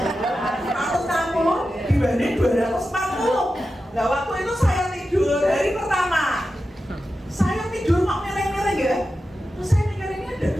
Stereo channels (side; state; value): both; normal; correlation 0.92